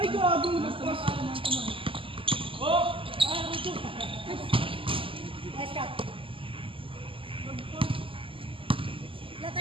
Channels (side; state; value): left; late; 0.25 ms